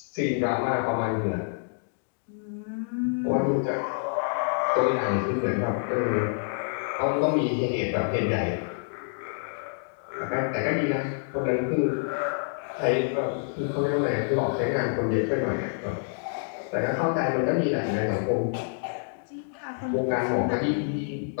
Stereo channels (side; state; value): right; silent; digital silence